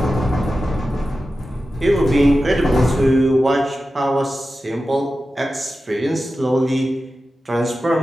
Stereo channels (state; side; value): normal; both; correlation 0.93